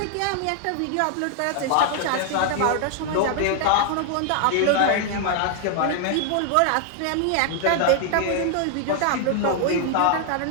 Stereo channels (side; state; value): both; different; correlation 0.00